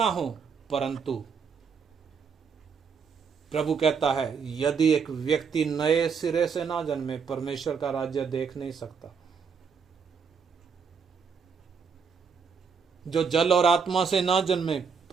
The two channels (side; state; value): left; quieter; 6.0 dB